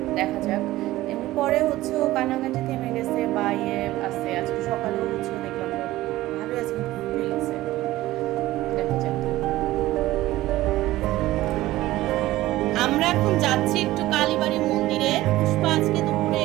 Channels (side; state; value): left; quieter; 16.5 dB